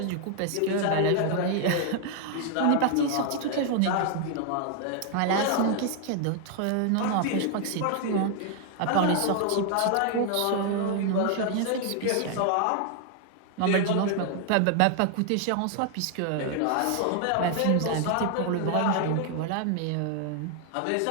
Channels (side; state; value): both; different; correlation 0.00